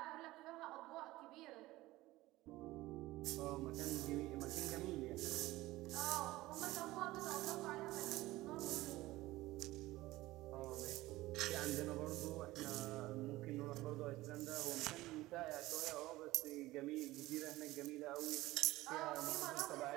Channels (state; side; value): quieter; left; 17.9 dB